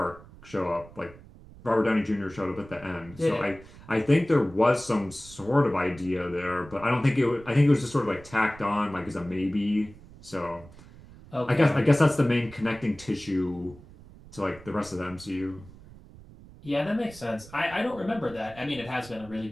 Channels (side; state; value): right; noise; rumble, 20 dB below the sound